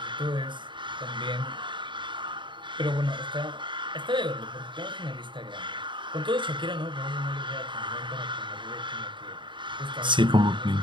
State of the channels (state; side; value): late; left; 0.23 ms